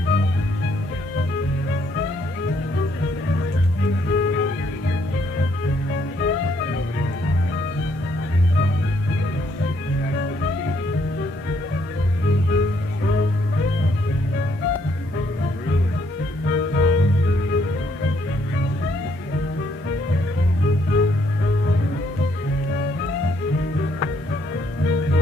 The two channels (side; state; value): both; normal; correlation 0.70